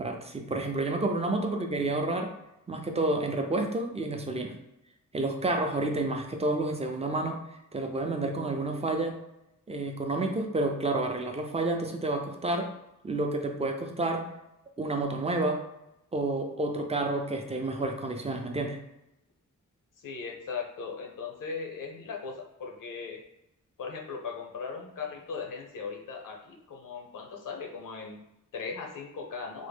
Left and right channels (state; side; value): normal; both; correlation 0.27